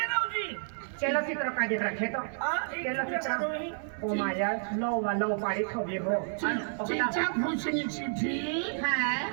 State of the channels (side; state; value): left; silent; digital silence